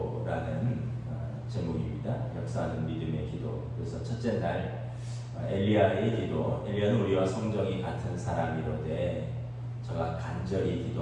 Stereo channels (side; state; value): both; identical; correlation 1.00